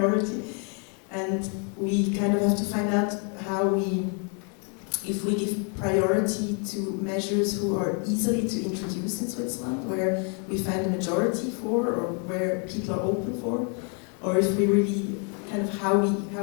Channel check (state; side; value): quieter; right; 39.3 dB